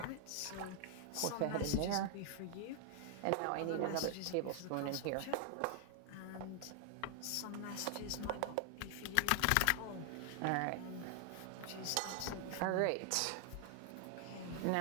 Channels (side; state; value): both; different; correlation 0.00